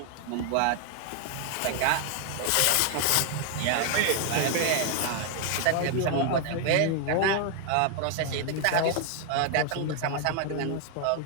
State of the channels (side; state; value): both; different; correlation 0.00